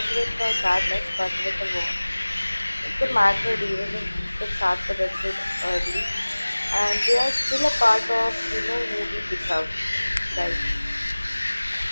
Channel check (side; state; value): both; inverted; correlation -1.00